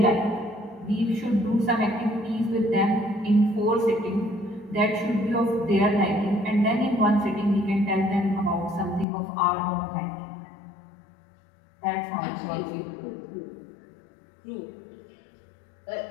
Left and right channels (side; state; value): right; drops out; at 9.1 s